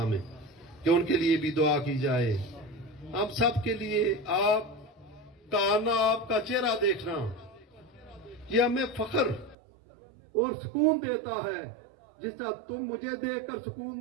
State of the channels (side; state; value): left; drops out; at 9.6 s